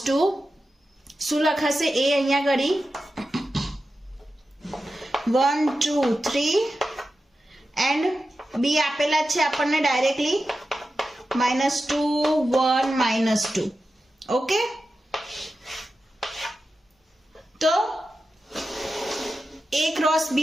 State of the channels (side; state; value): both; normal; correlation 0.92